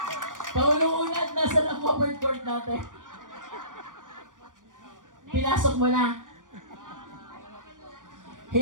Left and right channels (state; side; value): late; left; 0.88 ms